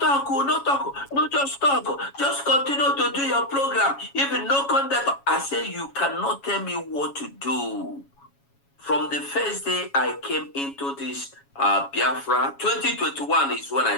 no just talk. Just continue to do your program. Even no contact. I say you cannot tell me what to do. From the first day I came into this Biafra, 2021 is when I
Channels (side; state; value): right; late; 7.2 ms